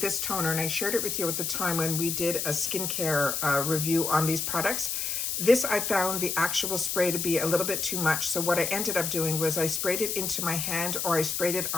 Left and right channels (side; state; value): left; noise; hiss, 1 dB below the sound